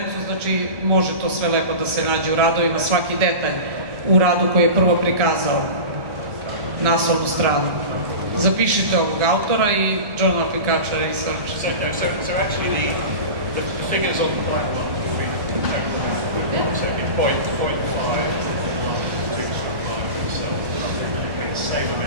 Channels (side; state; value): left; late; 1.2 ms